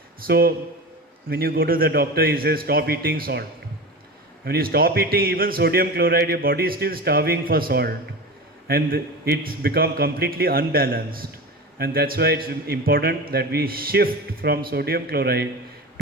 So when you go to the doctor, he says stop eating salt. When you stop eating even sodium chloride, your body is still starving for salt, and it's become completely unbalanced. And that's why it's important that we shift from sodium chloride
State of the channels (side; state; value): both; normal; correlation 0.28